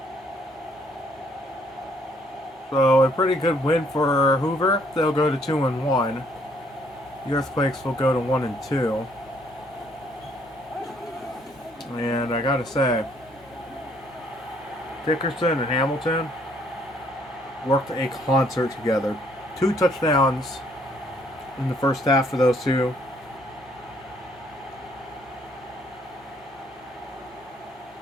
So a pretty good win for Hoover. They'll go to 2-1. The Earthquakes will go to 1-2. And I gotta say, Dickerson and Hamilton worked a concert together. 2 touchdowns in the first half for those two.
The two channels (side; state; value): both; normal; correlation 0.65